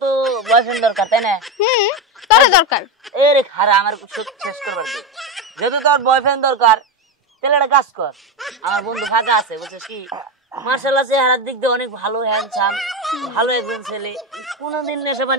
তো বয়ফ্রেন্ড দরকার, তাই না? তোরে দরকার। এ রে খারা আমার শেষ করবার দে। যেহেতু তোর বয়ফ্রেন্ড দরকার তাহলে একটা কাজ কর, আমার বন্ধু ফাঁকা আছে বুঝছিস কি, মার্শাল্লাহ চেহারার দিক দিয়ে অনেক ভালো, হ্যান্ডসাম, ভালো একজন ছেলে, কোনোদিন নেশা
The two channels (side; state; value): both; normal; correlation 0.15